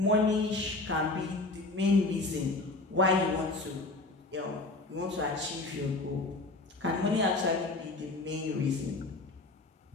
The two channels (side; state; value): right; quieter; 3.2 dB